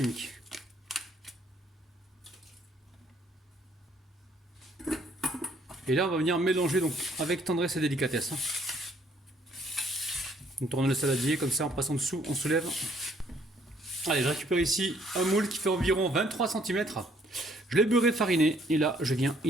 Et là, on va venir mélanger donc avec tendresse et délicatesse. On tourne le saladier comme ça, en passant dessous, on soulève. Allez, je récupère ici un moule qui fait environ 23 cm. Je l'ai beurré fariné et là je viens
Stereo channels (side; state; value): both; normal; correlation 0.64